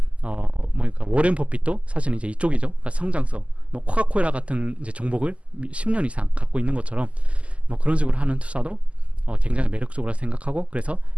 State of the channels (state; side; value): late; left; 0.061 ms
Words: 그러니까 워렌 버핏도 사실 이제 이쪽이죠. 그러니까 성장성, 뭐 코카콜라 같은 이제 종목을 10년 이상 갖고 있는 것처럼 뭐 그런 식으로 하는 투자도 굉장히 매력적으로 생각하고, 그래서